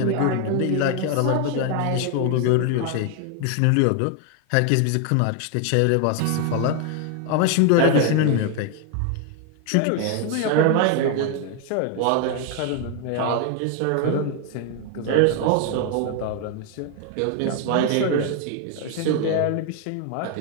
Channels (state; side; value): different; both; correlation 0.01